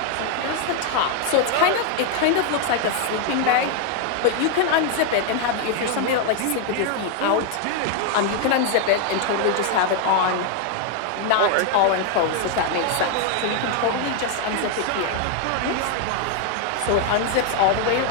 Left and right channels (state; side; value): different; both; correlation 0.00